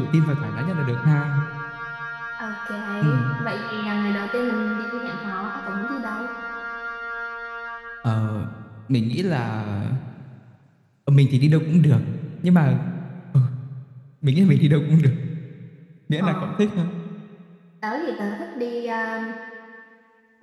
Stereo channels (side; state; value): both; identical; correlation 1.00